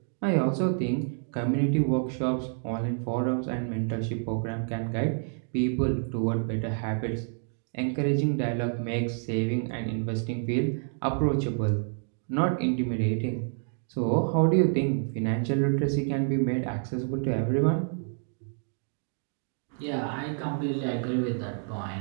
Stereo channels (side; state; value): left; silent; 59 dB below the other